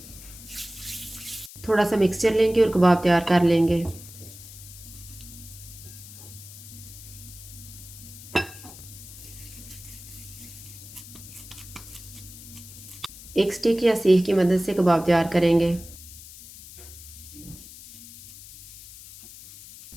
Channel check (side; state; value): left; noise; hiss, 16 dB below the sound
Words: थोड़ा सा मिक्सचर लेंगे और कबाब तैयार कर लेंगे। एक स्टिक या सीख की मदद से कबाब तैयार करेंगे।